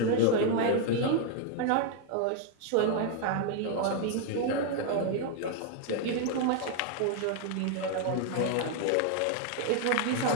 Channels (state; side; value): different; both; correlation 0.00